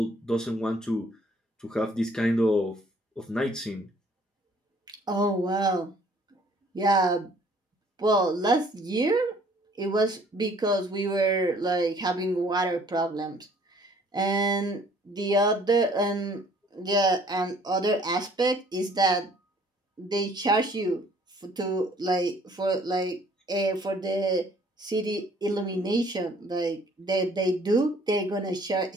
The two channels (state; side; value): normal; both; correlation 0.58